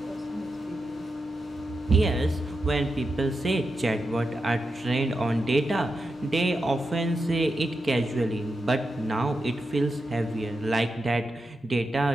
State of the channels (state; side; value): normal; both; correlation 0.88